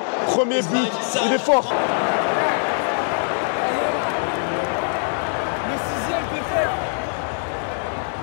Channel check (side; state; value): right; silent; digital silence